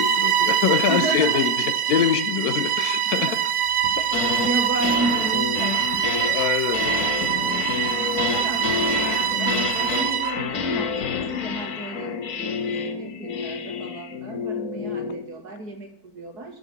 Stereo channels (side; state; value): left; late; 4.5 ms